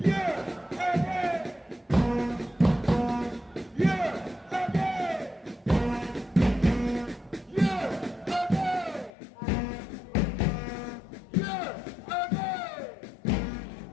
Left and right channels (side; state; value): right; drops out; at 9.1 s